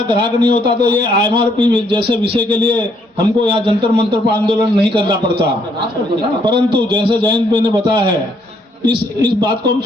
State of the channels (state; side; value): normal; both; correlation 0.69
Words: ग्राहक नहीं होता तो ये एमआरपी जैसे विषय के लिए हमको यहाँ जंतर मंतर पर आंदोलन नहीं करना पड़ता। परंतु जैसे जयंत भाई ने बताया है, इस बात को हम